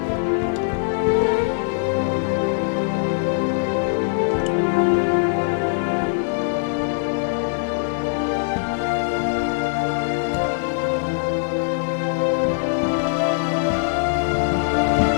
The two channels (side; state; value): right; silent; digital silence